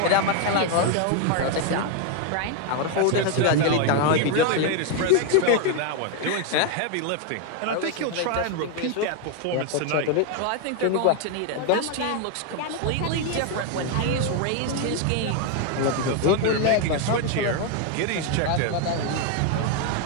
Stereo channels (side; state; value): both; different; correlation 0.01